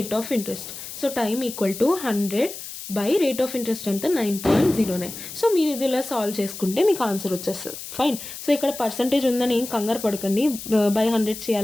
of interest. So time equal to 100 by rate of interest ఎంత 9.09. So మీరు ఇది ఇలా solve చేసుకుంటే మీకు ఆన్సర్ వచ్చేస్తుంది. ఫైన్. సో ఇక్కడ పర్సంటేజ్ ఉందని ఏం కంగారు పడకండి, బై 100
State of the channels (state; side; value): noise; left; hiss, 11 dB below the sound